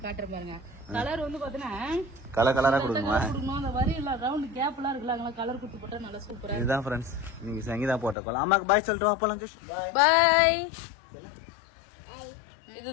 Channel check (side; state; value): right; drops out; at 8.2 s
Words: காட்டுறேன் பாருங்க. கலர் வந்து பாத்தீங்கன்னா கலரா கொடுக்கணுமா? அந்த வரி எல்லாம் ரவுண்ட் கேப் எல்லாம் இருக்குல்ல, அங்க கலர் குடுத்து போட்டா நல்லா சூப்பரா. இதுதான் ஃப்ரெண்ட்ஸ் இன்னைக்கு சங்கீதா போட்ட கோலம். அம்மாக்கு பாய் சொல்லிட்டு வா போலாம். பாய்.